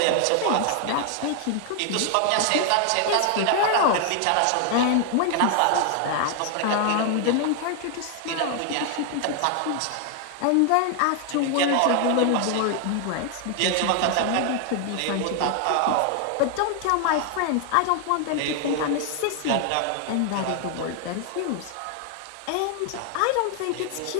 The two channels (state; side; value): different; both; correlation 0.00